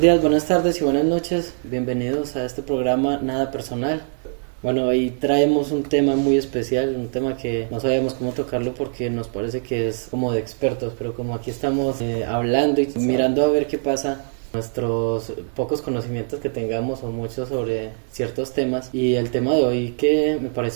buenas tardes y buenas noches. Bienvenidos a este programa Nada Personal. Bueno, hoy traemos un tema muy especial, un tema que no sabíamos cómo tocarlo porque nos parece que es como de expertos, pero como aquí estamos hablando y mirando a ver qué pasa, nuestros pocos conocimientos que tengamos o muchos sobre ciertos temas, y el tema de hoy que me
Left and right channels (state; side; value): silent; left; digital silence